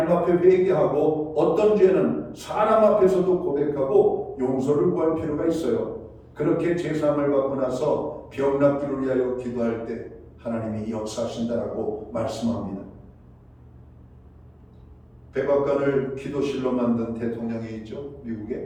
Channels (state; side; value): identical; both; correlation 1.00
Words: 앞에 회개하고 어떤 죄는 사람 앞에서도 고백하고 용서를 구할 필요가 있어요. 그렇게 제사함을 받고 나서 병 낫기를 위하여 기도할 때 하나님이 역사하신다라고 말씀합니다. 백악관을 기도실로 만든 대통령이 있죠.